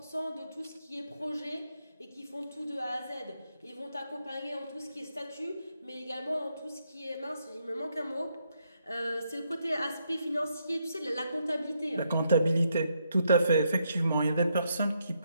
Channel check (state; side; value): inverted; both; correlation -0.77